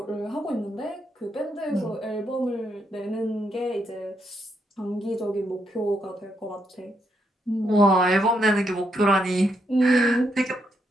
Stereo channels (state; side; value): normal; both; correlation 0.78